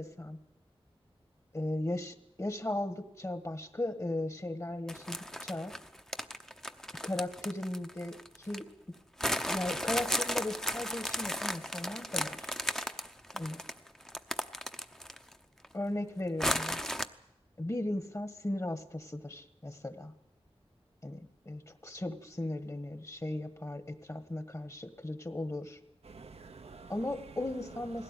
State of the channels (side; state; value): both; normal; correlation 0.79